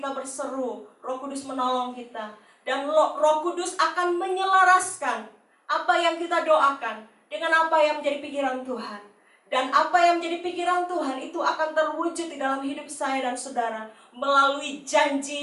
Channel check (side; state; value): both; identical; correlation 1.00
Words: berseru, Roh Kudus menolong kita. Dan Roh Kudus akan menyelaraskan apa yang kita doakan dengan apa yang menjadi pikiran Tuhan. Dan apa yang menjadi pikiran Tuhan itu akan terwujud di dalam hidup saya dan saudara melalui